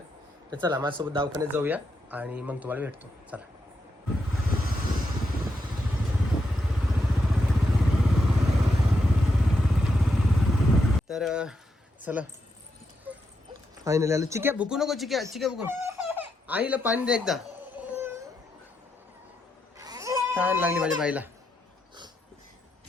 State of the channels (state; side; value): normal; both; correlation 0.83